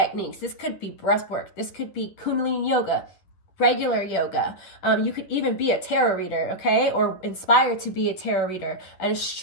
This could be breath work. This could be Kundalini yoga, regular yoga. You could even be a tarot reader, okay? Or inspired to be a tarot reader, an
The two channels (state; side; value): late; right; 10 ms